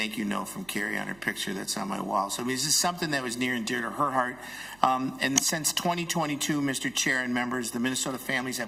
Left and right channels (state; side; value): noise; right; hum, 25 dB below the sound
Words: you note from Carrie on her picture that's on my wall. So I mean, this is something that was near and dear to her heart. And since 2022, Mr. Chair and members, the Minnesota families